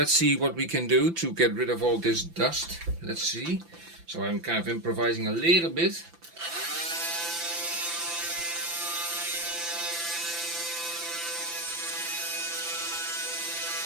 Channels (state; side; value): late; left; 5.9 ms